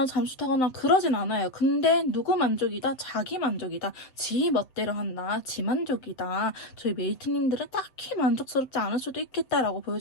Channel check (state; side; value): late; right; 7.8 ms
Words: 잠수타거나 그러진 않아요. 근데 누구 만족이다? 자기 만족이다. 지 멋대로 한다. 지 만족이다. 저희 메이트님들은 딱히 만족스럽지 않을 수도 있겠다라고